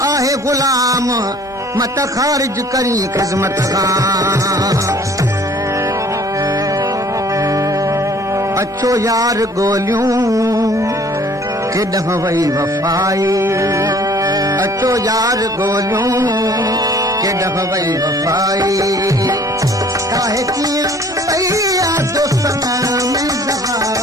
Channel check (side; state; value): both; normal; correlation 0.54